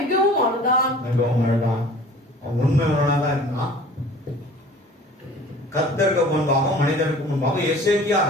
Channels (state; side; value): normal; both; correlation 0.46